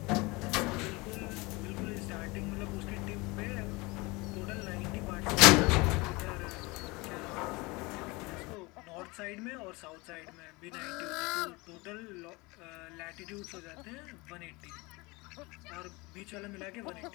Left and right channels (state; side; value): quieter; right; 24.6 dB